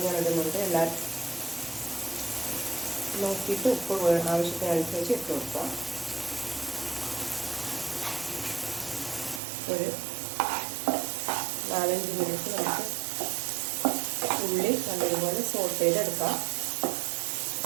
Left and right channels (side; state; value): left; drops out; at 9.4 s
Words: ഞാൻ ഇടുന്നുണ്ട്. എല്ലാവരും നോക്കിയിട്ട് ഉപ്പ് ആവശ്യത്തിനനുസരിച്ച് ഇട്ട് കൊടുക്കാം. ഒരു 4-5 മിനിറ്റ് നമുക്ക് ഉള്ളി നല്ലതുപോലെ സോട്ട് ചെയ്തെടുക്കാം.